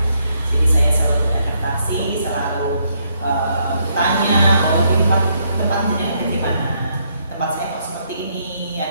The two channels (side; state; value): both; inverted; correlation -0.74